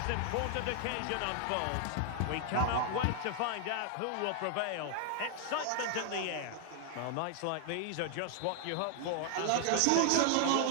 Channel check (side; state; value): both; different; correlation 0.00